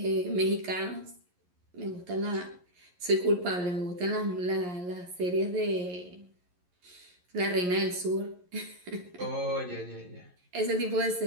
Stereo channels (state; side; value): late; left; 11 ms